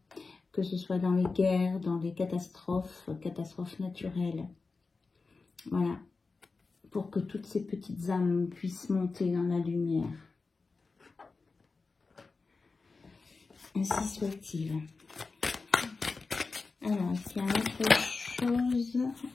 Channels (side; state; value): right; quieter; 4.1 dB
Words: que ce soit dans les guerres, dans les catastrophes naturelles. Voilà, pour que toutes ces petites âmes puissent monter dans la lumière. Ainsi soit-il. Alors, est-ce qu'il y a autre chose